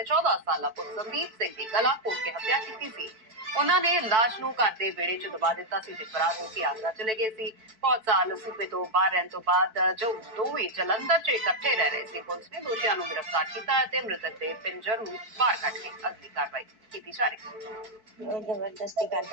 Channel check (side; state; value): left; late; 4.6 ms